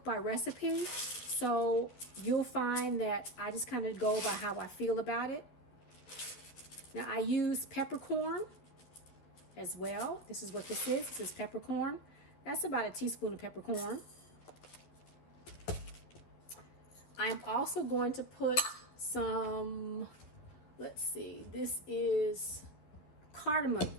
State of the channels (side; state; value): right; late; 12 ms